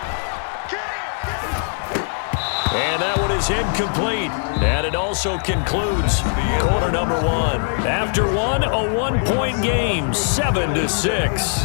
And that one is incomplete. And it also concludes quarter number 1. After one, a 1-point game,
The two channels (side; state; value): right; silent; digital silence